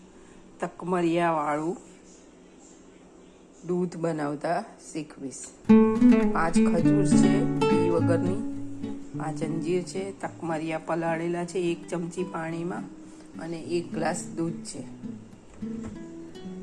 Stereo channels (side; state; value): both; identical; correlation 1.00